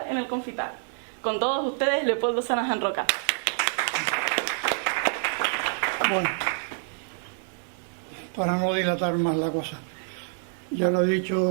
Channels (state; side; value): silent; left; digital silence